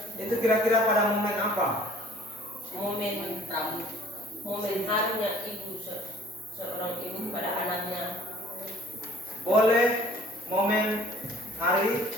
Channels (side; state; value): both; normal; correlation 0.54